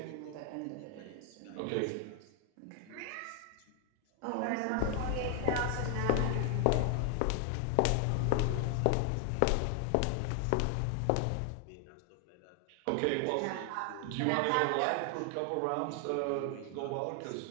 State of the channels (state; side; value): different; both; correlation 0.00